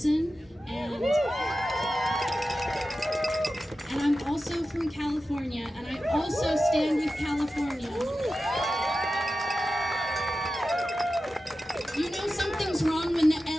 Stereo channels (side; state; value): both; normal; correlation 0.93